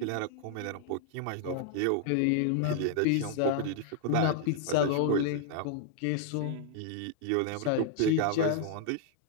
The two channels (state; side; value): different; both; correlation 0.00